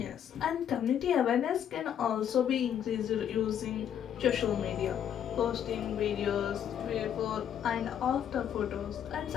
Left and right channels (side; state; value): right; quieter; 9.4 dB